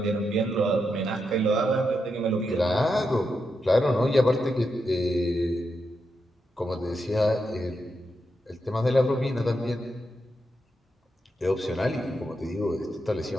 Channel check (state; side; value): normal; both; correlation 0.85